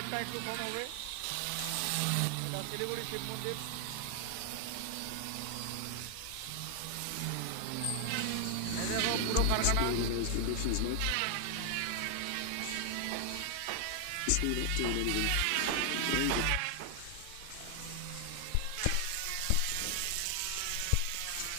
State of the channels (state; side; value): different; both; correlation 0.00